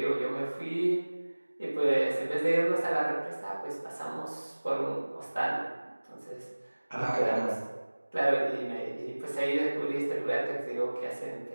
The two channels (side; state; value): both; inverted; correlation -1.00